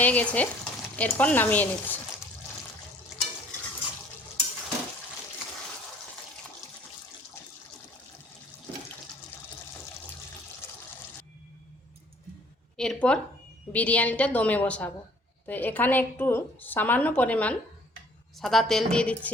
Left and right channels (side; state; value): both; normal; correlation 0.57